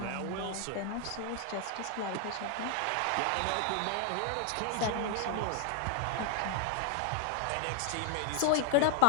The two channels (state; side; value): different; both; correlation 0.00